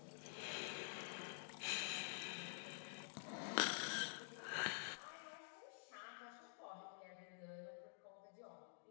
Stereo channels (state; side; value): silent; right; digital silence